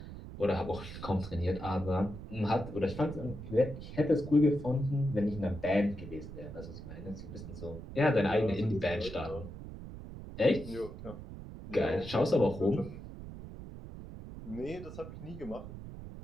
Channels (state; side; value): noise; right; rumble, 11 dB below the sound